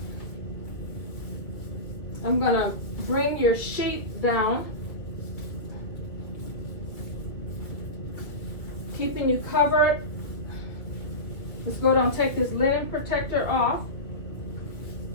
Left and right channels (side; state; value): right; late; 2.0 ms